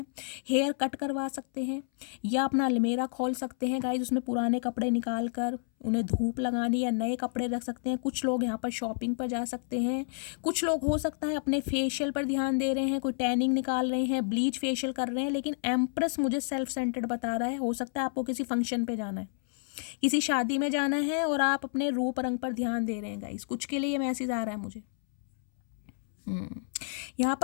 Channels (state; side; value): silent; right; 58 dB below the other